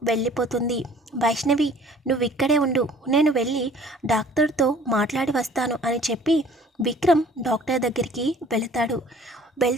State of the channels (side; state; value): both; normal; correlation 0.51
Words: వెళ్ళిపోతుంది. వైష్ణవి, నువ్వు ఇక్కడే ఉండు, నేను వెళ్ళి డాక్టర్తో మాట్లాడి వస్తాను అని చెప్పి విక్రమ్ డాక్టర్ దగ్గరికి వెళతాడు.